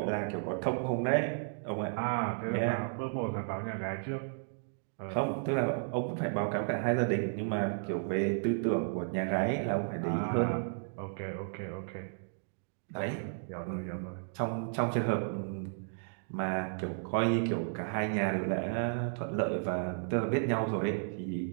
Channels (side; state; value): left; silent; digital silence